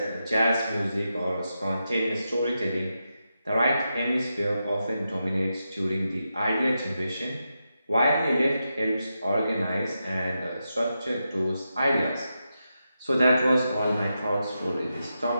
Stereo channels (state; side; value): inverted; both; correlation -0.87